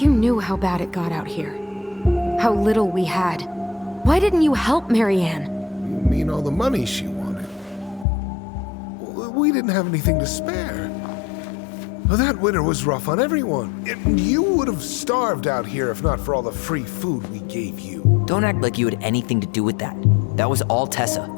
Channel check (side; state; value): right; drops out; at 8.1 s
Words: knew how bad it got out here. How little we had. Why didn't you help Marianne? You mean all the money she wanted? We didn't have anything to spare. Well, that winter was rough on everyone. You would have starved out here if not for all the free food we gave you. Don't act like you had anything to do with that. That was all Tessa.